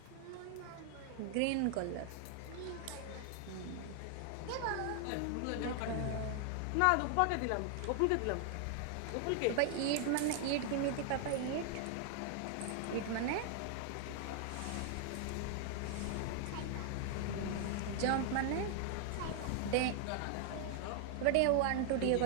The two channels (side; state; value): both; different; correlation 0.00